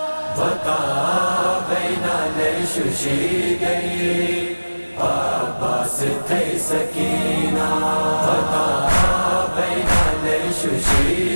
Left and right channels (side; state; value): both; inverted; correlation -1.00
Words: Vaka baina le shushi gayi, Abbas thay sakina. Vaka baina le